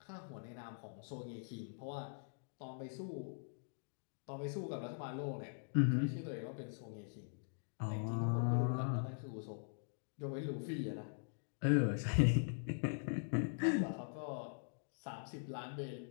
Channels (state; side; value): silent; right; digital silence